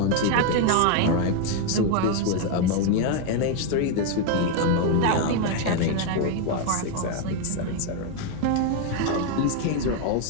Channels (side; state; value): both; different; correlation 0.01